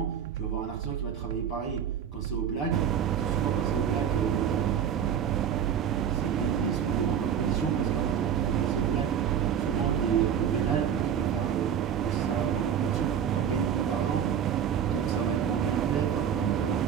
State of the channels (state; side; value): quieter; left; 8.5 dB